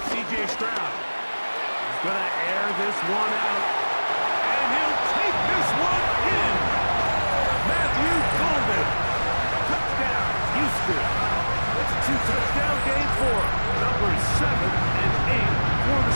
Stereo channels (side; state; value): both; inverted; correlation -1.00